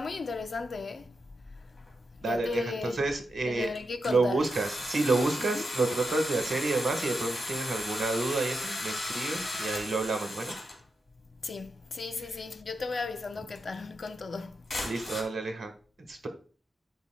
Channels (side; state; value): both; normal; correlation 0.87